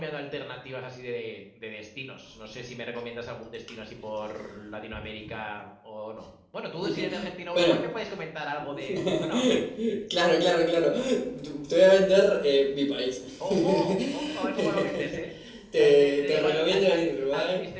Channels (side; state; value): both; identical; correlation 1.00